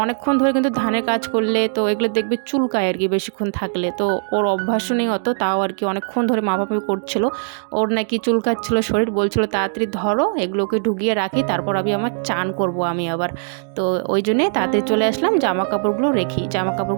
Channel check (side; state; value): left; silent; digital silence